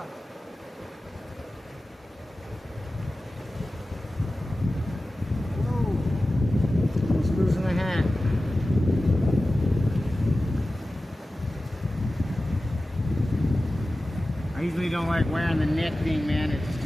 Whoa. Almost losing the hat. I usually don't like wearing the neck thing, man. It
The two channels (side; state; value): both; normal; correlation 0.95